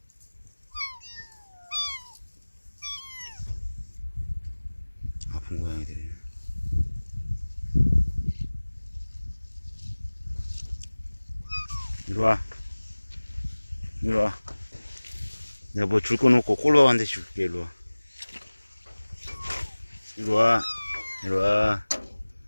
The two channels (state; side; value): inverted; both; correlation -1.00